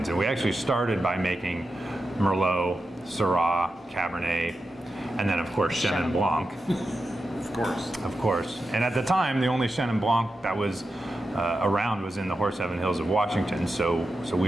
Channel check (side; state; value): both; normal; correlation 0.90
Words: And we actually started by making Merlot, Syrah, Cabernet, and then of course Chenin Blanc. Of course. And at the time, the only Chenin Blanc that was around was in the Horseheaven Hills of Washington. So